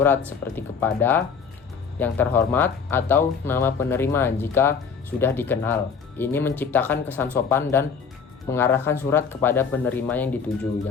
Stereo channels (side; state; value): right; quieter; 6.0 dB